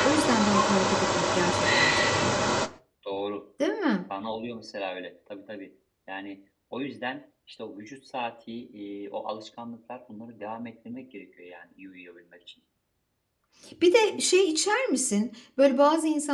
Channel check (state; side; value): identical; both; correlation 1.00